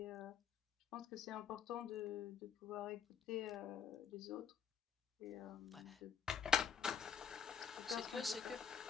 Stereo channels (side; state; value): right; quieter; 7.2 dB